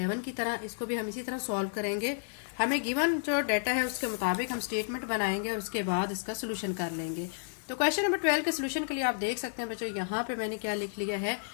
की तरह, इसको भी हम इसी तरह सॉल्व करेंगे। हमें गिवन जो डाटा है उसके मुताबिक हम स्टेटमेंट बनाएंगे और उसके बाद इसका सोल्यूशन कर लेंगे। तो क्वेश्चन नंबर 12 के सोल्यूशन के लिए आप देख सकते हैं बच्चों, यहाँ पे मैंने क्या लिख लिया है,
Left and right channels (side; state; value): right; silent; digital silence